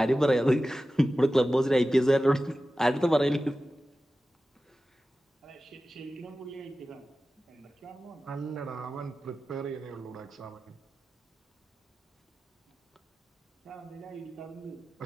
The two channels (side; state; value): both; normal; correlation 0.95